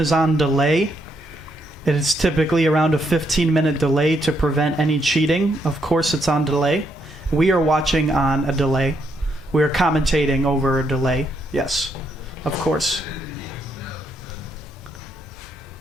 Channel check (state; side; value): normal; both; correlation 0.76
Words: on delay. It is typically around a 15-minute delay to prevent any cheating. Of course, it's on delay. We are watching on a delay. We are commentating over a delay. Yes, of course.